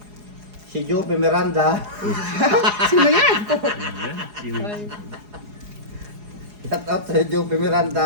Si Jope Miranda. Sino yan? yan. Sino? Shout out sa Jope Miranda.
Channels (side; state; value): left; late; 4.8 ms